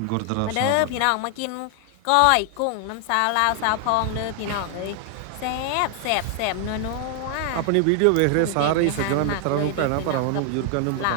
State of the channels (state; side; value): different; both; correlation 0.00